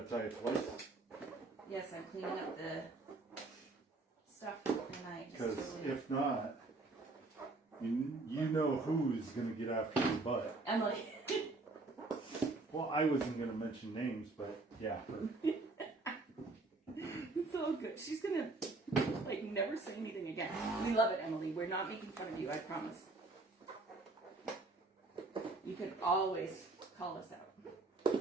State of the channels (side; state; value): left; quieter; 3.4 dB